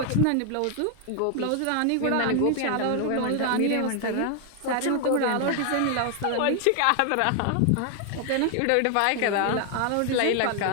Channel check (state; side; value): different; both; correlation 0.00